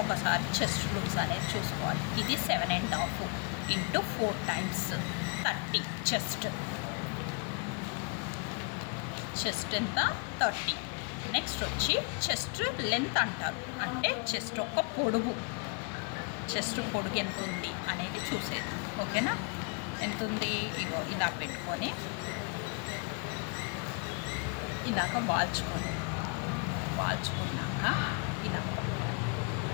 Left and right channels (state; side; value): quieter; right; 35.1 dB